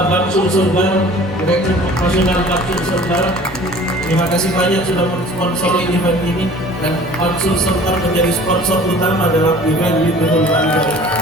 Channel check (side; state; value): both; normal; correlation 0.47